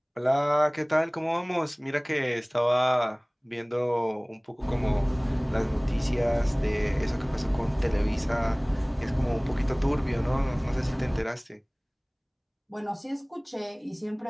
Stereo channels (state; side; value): identical; both; correlation 1.00